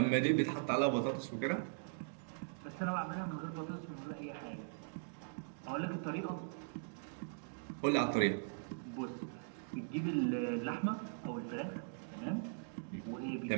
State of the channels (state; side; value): silent; left; digital silence